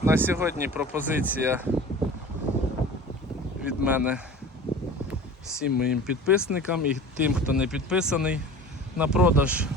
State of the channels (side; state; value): both; normal; correlation 0.39